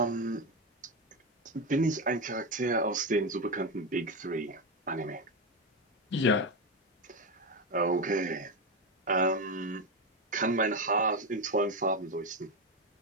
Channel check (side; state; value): both; normal; correlation 0.13